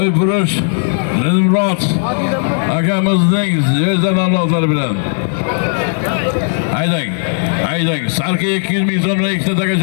purush Dilmurod akamizning zvezda nomlari bilan. Haydang. Sarka 200 ming so'mdan ikkita taka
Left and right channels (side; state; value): right; silent; digital silence